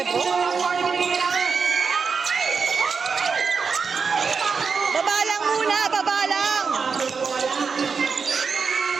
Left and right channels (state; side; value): quieter; left; 5.4 dB